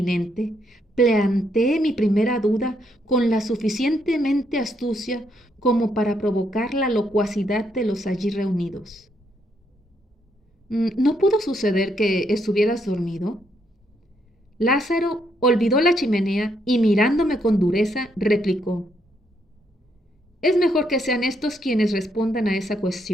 planteé mi primera duda con la suficientemente astucia como para provocar la locuacidad de los allí reunidos. ¿No pudo suceder que estuvieras dormido? Lázaro olvidó la chimenea y mirándome con dureza replicó: es mejor que sean estos quienes respondan a esa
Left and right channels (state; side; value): normal; both; correlation 0.75